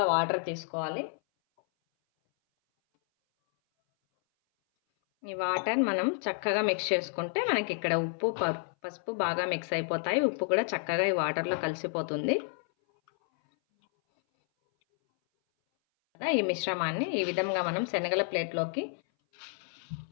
వాటర్ తీసుకోవాలి. ఈ వాటర్ మనం చక్కగా మిక్స్ చేసుకుంటే మనకి ఇక్కడ ఉప్పు పసుపు బాగా మిక్స్ అయిపోతాయి. ఉప్పు కూడా చక్కగా ఈ వాటర్లో కలిసిపోతుంది. ఈ మిశ్రమాన్ని ఈ విధంగా మనం శనగల ప్లేట్లోకి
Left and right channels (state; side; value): silent; right; 58 dB below the other